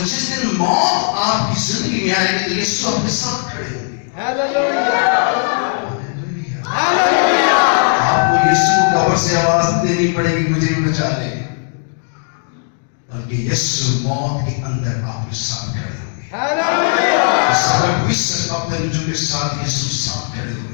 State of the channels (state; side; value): silent; right; 67 dB below the other